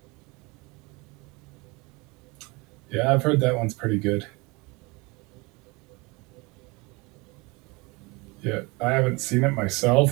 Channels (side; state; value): left; quieter; 26.1 dB